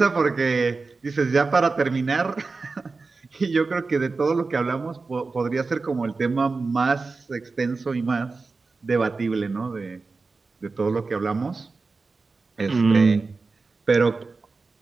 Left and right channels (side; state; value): left; quieter; 4.1 dB